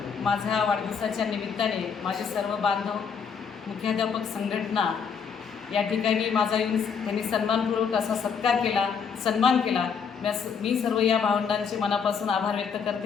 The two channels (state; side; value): quieter; right; 6.4 dB